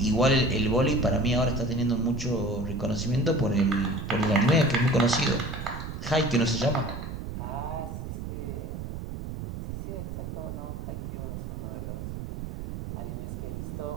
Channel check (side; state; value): right; noise; rumble, 7 dB below the sound